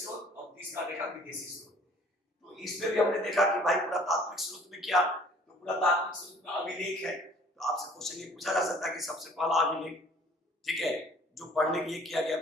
और तीसरा देखा विदेशी स्रोत। तो इसमें भी हमने देखा कि भाई पुरातात्विक स्रोत में क्या, तो पुरातात्विक स्रोत में अभिलेख है। तो आपसे क्वेश्चन ये पूछा जा सकता है कि सबसे पहला अभिलेख, ठीक है, जो पढ़ने के लिए किया गया,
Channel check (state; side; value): normal; both; correlation 0.54